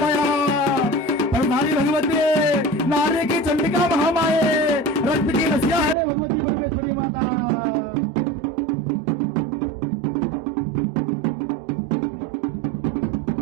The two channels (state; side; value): drops out; left; at 6.0 s